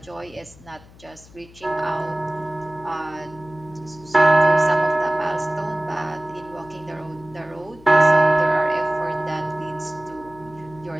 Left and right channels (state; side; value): noise; left; hum, 23 dB below the sound